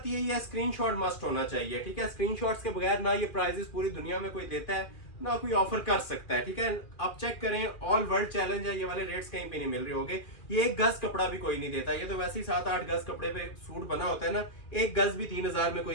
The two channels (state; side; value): late; right; 2.4 ms